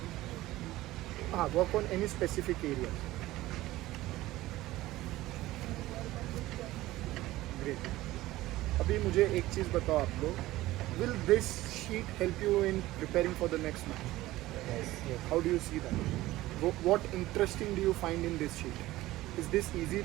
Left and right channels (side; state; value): left; quieter; 17.0 dB